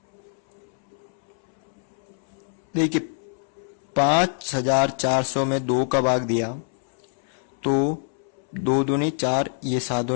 देखिए 5400 में 2 का भाग दिया तो 2 दूनी 4, ये 7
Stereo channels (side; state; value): right; silent; 62 dB below the other